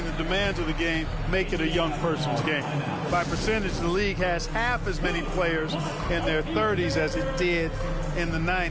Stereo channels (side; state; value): both; identical; correlation 1.00